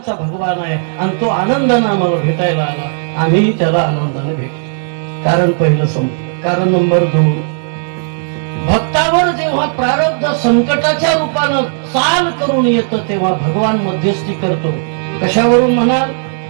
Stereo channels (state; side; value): silent; left; digital silence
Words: भगवान आहे आणि तो आनंदानं आम्हाला भेटायला आला, आम्ही त्याला आनंदाने भेटलो. कारण पहिलं संपलं. कारण नंबर 2, भक्तावर जेव्हा प्रारब्ध संकटाच्या रूपानं चाल करून येतं तेव्हा भगवान मध्यस्थी करतो. कशावरून म्हणाल?